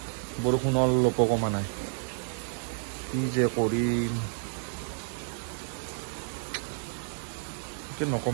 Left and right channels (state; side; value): silent; left; digital silence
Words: বৰষুণ অলপ কমা নাই কি যে কৰিম